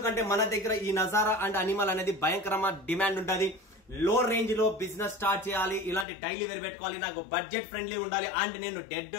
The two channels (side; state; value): right; drops out; at 6.1 s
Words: మన దగ్గర ఈ నజారా అండ్ అనిమల్ అనేది భయంకరమైన డిమాండ్ ఉంటుంది. లో రేంజ్ లో బిజినెస్ స్టార్ట్ చేయాలి, ఇలాంటి డైలీ వేర్ పెట్టుకోవాలి, నాకు బడ్జెట్ ఫ్రెండ్లీ ఉండాలి అండ్ నేను